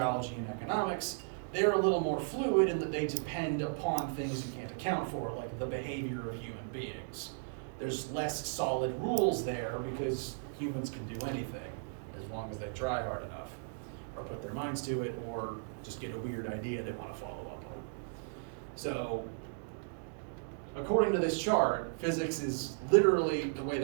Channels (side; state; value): left; silent; digital silence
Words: and economics, they're a little more fluid in that they depend upon things you can't account for, like the behavior of human beings. There's less solid rules there because humans can do anything as long as they try hard enough or put their minds to it or just get a weird idea they want to follow up on. So according to this chart, physics is literally the way